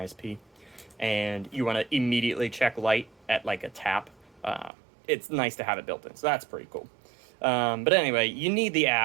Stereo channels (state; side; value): drops out; left; at 4.7 s